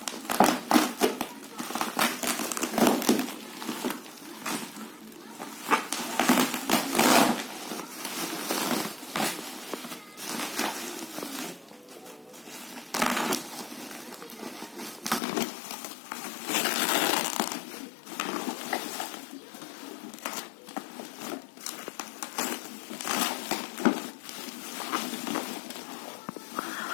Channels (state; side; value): drops out; right; at 15.2 s